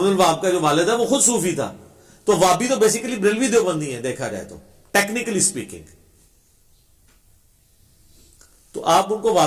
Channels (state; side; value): identical; both; correlation 1.00